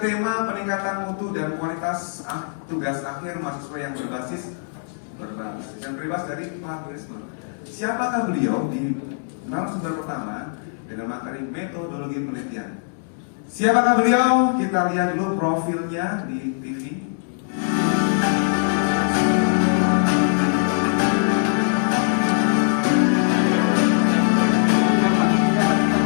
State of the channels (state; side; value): silent; right; digital silence